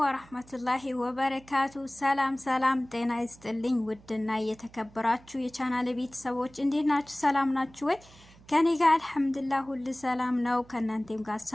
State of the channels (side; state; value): right; noise; hum, 25 dB below the sound